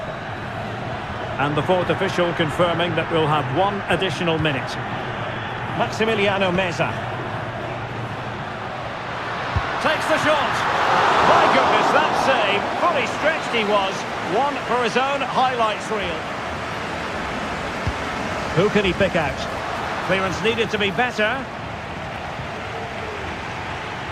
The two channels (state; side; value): identical; both; correlation 1.00